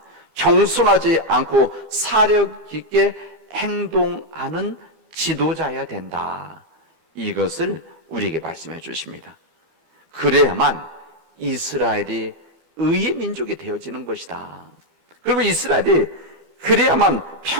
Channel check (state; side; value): late; left; 32 ms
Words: 경솔하지 않고 사력 있게 행동하는 지도자여야 된다. 이것을 우리에게 말씀해 주십니다. 그래야만 이스라엘이 의의 민족이 되어지는 것이다. 그리고 이스라엘이 그래야만